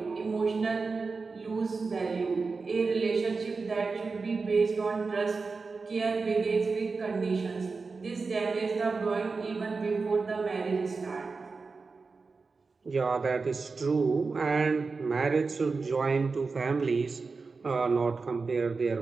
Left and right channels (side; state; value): left; quieter; 4.3 dB